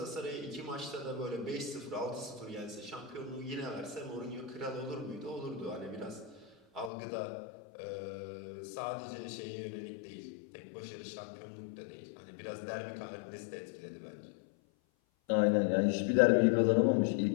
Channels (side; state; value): right; drops out; at 6.9 s